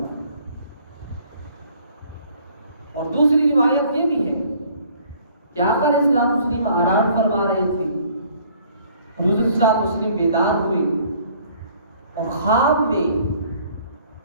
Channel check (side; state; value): both; inverted; correlation -0.57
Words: اور دوسری روایت یہ بھی ہے کہ آقا علیہ الصلوۃ والسلام آرام فرما رہے تھے، حضور صلی اللہ علیہ وسلم بیدار ہوئے اور خواب میں